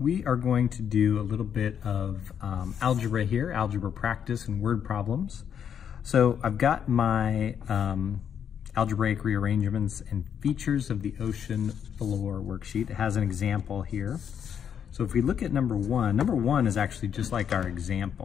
are going to do a little bit of algebra here, algebra practice and word problems. So I've got my algebraic rearrangements and features of the ocean floor worksheet. It has an example here. So if we look at number one is actually just like our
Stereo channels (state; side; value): quieter; right; 8.2 dB